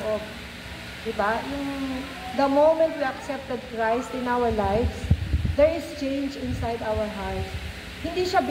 Diba? The moment we accepted Christ in our lives, there is change inside our hearts. Hindi siya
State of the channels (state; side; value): identical; both; correlation 1.00